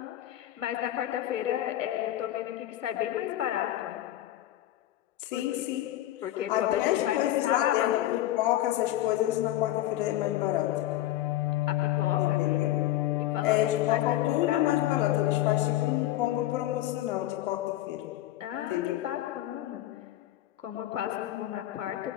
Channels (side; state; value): right; quieter; 14.3 dB